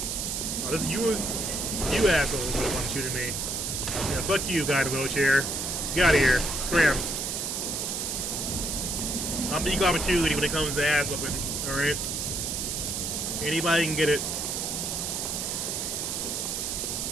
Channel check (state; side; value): noise; right; hiss, 2 dB below the sound